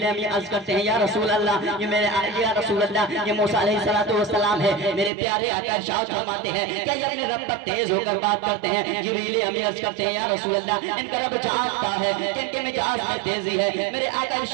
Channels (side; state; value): left; drops out; at 5.1 s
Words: امین عرض کرتے ہیں یا رسول اللہ یہ میرے یا رسول اللہ یہ موسیٰ علیہ السلام ہے میرے پیارے آقا ارشاد فرماتے ہیں کہ یہ اپنے رب پر تیز ہو کر بات کرتے ہیں جبریل امین عرض کرتے ہیں یا رسول اللہ ان کا رب جانتا ہے کہ ان کے مجاز میں تیزی ہے میرے آقا